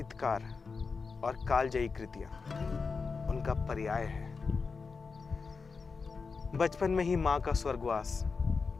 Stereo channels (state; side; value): quieter; right; 4.8 dB